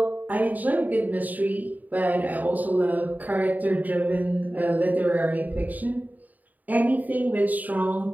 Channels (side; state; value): left; late; 0.081 ms